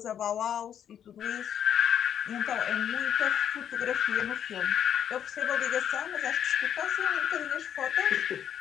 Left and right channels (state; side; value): quieter; right; 9.4 dB